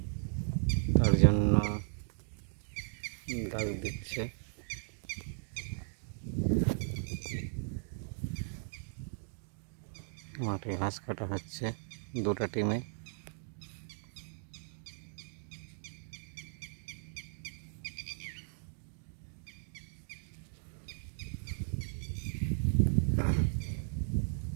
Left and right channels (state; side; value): silent; left; digital silence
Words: তার জন্য দাগ দিচ্ছে। মাঠে ঘাস কাটা হচ্ছে দুটো টিমে।